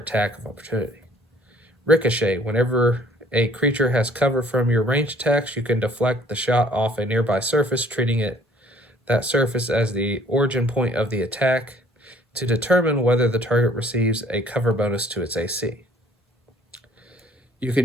of opportunity. Ricochet. Whenever a creature has cover from your ranged attacks, you can deflect the shot off a nearby surface, treating that surface as the origin point of the attack to determine whether the target receives a cover bonus to its AC. You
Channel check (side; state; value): both; normal; correlation 0.56